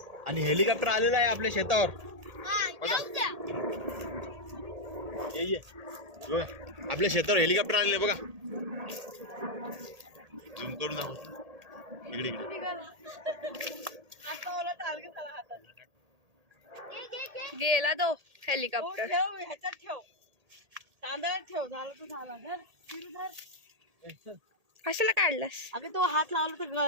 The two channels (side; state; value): left; late; 1.8 ms